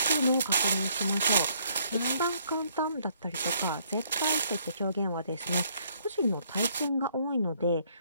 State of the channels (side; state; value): both; inverted; correlation -0.67